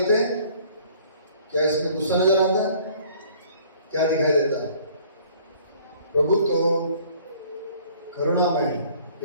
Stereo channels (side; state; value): both; inverted; correlation -0.55